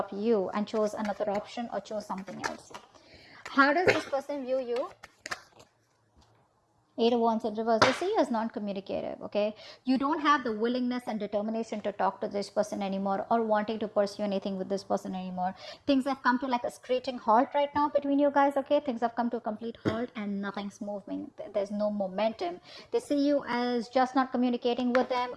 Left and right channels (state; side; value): identical; both; correlation 1.00